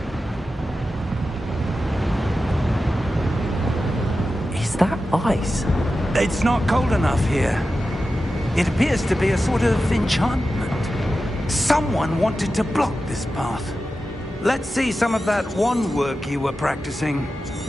Is that ice? It's not cold enough here. It appears to be a sort of enchantment. Someone wanted to block this path. Let's see some of that wand work you were practicing.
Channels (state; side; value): normal; both; correlation 0.92